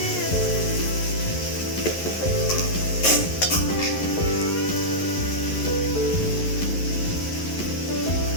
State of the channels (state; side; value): late; right; 11 ms